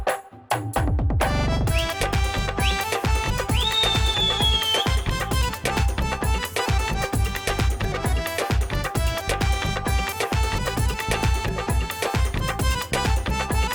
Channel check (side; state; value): both; identical; correlation 1.00